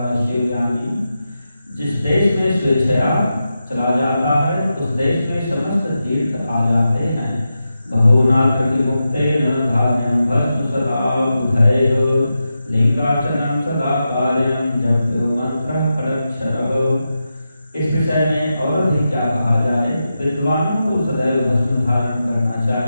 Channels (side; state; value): both; inverted; correlation -0.89